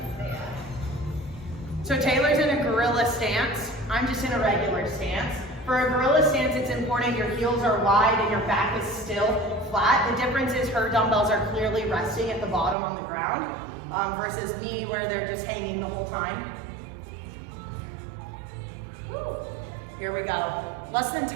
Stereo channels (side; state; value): left; drops out; at 12.8 s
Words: because they So Taylor's in a gorilla stance. I'm just in a regular stance. For a gorilla stance, it's important your heels are wide and your back is still flat. The difference is her dumbbells are clearly resting at the bottom on the ground versus me where they're just hanging the whole time. Woo. Here we go. Less than